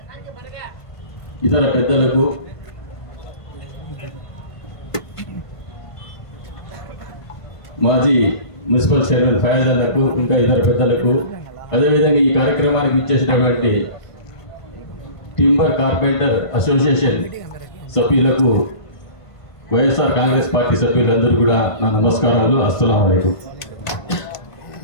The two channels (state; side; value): late; right; 1.5 ms